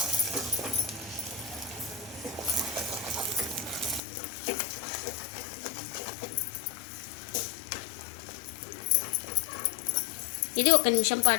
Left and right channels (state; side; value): drops out; right; at 4.0 s